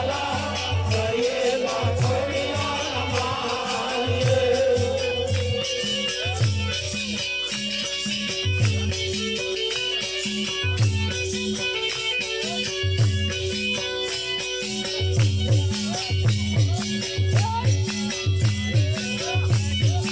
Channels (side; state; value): left; noise; hum, 24 dB below the sound